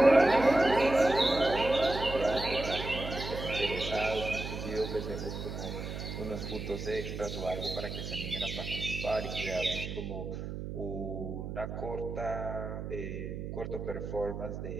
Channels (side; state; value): right; noise; hum, 6 dB below the sound